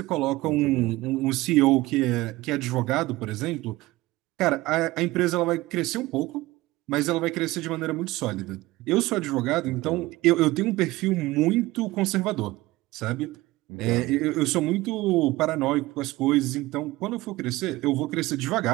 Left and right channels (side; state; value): left; quieter; 19.1 dB